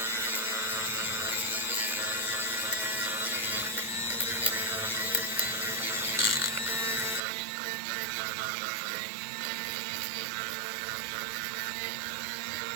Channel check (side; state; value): left; drops out; at 7.2 s